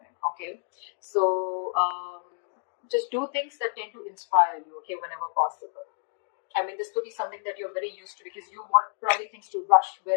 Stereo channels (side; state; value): right; silent; digital silence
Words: okay. So just do things that tend to inspire you, okay, whenever possible. This could be something that you're very used to, because you want probably things to rush